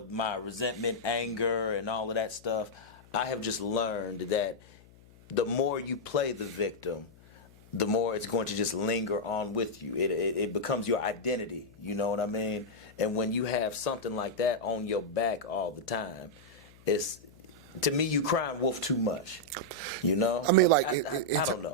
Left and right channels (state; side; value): noise; left; hum, 25 dB below the sound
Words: my resentment, anger, and all of that stuff. I have just learned that the more you play the victim, the more it's going to just linger on with you. It becomes your identity, you know what I mean? And when you have something like that on your back all the time, to me, you crying wolf too much, you know? I mean, like, I don't know.